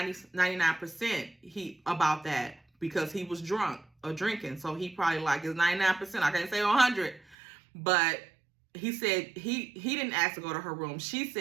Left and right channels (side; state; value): left; drops out; at 7.4 s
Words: about that because he was drunk or drinking. So he probably like is 99%. I can't say 100, but he said he didn't ask to go to her room. She